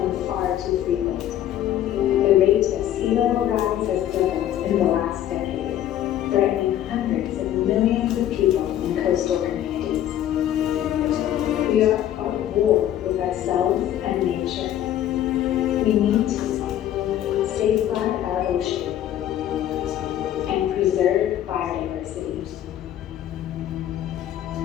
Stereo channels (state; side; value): quieter; right; 11.7 dB